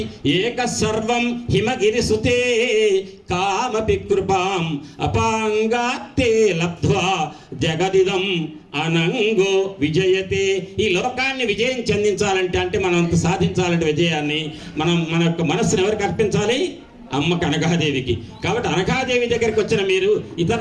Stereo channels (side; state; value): both; identical; correlation 1.00